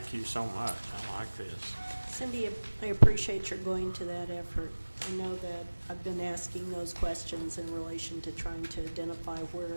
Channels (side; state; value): both; inverted; correlation -1.00